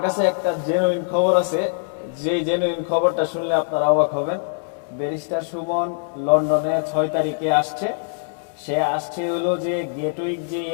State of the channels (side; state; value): right; silent; digital silence